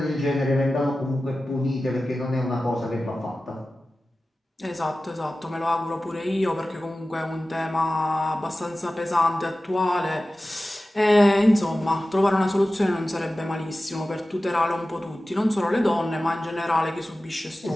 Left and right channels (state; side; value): normal; both; correlation 0.95